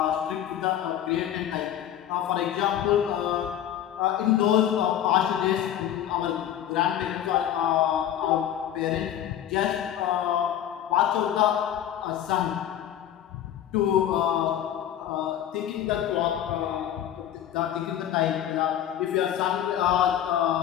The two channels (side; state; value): right; quieter; 10.8 dB